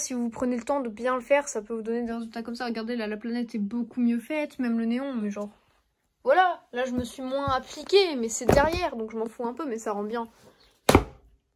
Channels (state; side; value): identical; both; correlation 1.00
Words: vous prenez le temps de bien le faire, ça peut vous donner des résultats comme ça. Regardez, là, la planète est beaucoup mieux faite, même le néon, mais genre... Voilà, là, je me suis moins appliquée, mais c'est derrière, donc je m'en fous un peu, mais ça rend bien.